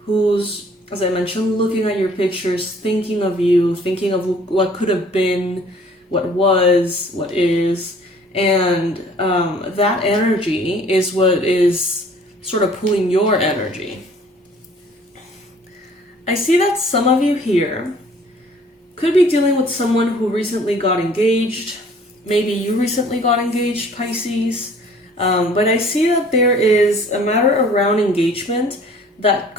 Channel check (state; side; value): normal; both; correlation 0.54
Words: as I mentioned, looking at your pictures, thinking of you, thinking of what could have been, what was, what is. And that energy is what is sort of pulling your energy. I see that some of you here could be dealing with someone who recently got engaged. Maybe you recently got engaged, Pisces. But I see that there is a matter around engagement that